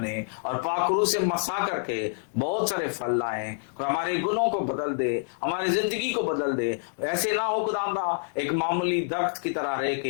और पाखरू से मसा करके बहुत सारे फल लाए। हमारे गुणों को बदल दे, हमारी जिंदगी को बदल दे। ऐसे ना हो खुदावंदा एक मामूली दरख्त की तरह रह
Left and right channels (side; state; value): right; silent; 60 dB below the other